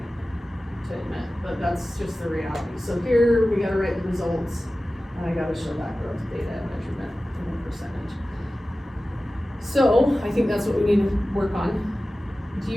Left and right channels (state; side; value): normal; both; correlation 0.96